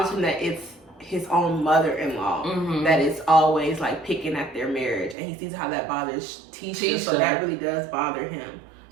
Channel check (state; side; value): drops out; left; at 5.2 s